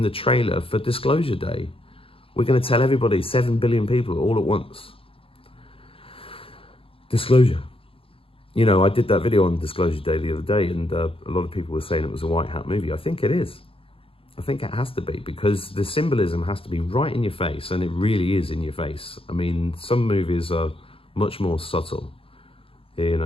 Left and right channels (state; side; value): late; right; 0.27 ms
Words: the trailer for Disclosure Day. We're going to tell everybody 7 billion people all at once. Disclosure. You know, I did that video on Disclosure Day the other day, and a lot of people were saying it was a white hat movie. I think it is. I think it has to be, because the symbolism has to be right in your face, and it really is in your face. I mean, some movies are much more subtle, you